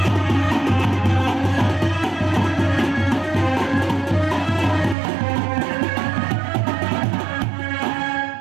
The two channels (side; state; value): left; drops out; at 5.0 s